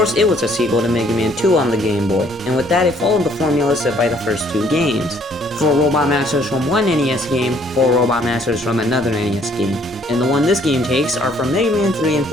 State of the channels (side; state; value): both; normal; correlation 0.62